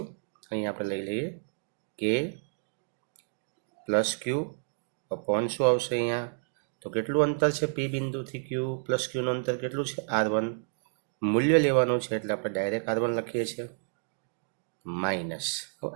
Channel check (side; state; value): left; silent; digital silence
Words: અહીં આપણે લઈ લઈએ કે પ્લસ ક્યુ અપોન શું આવશે અહીંયા? તો કેટલું અંતર છે પી બિંદુથી ક્યુ પ્લસ ક્યુનું અંતર કેટલું છે? R1. મૂલ્ય લેવાનું છે એટલે આપણે ડાયરેક્ટ R1 લખીએ છીએ. માઇનસ, તો